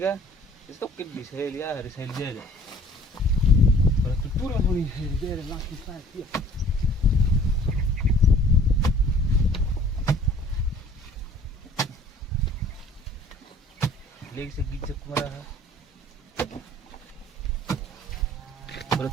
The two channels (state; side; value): normal; both; correlation 0.52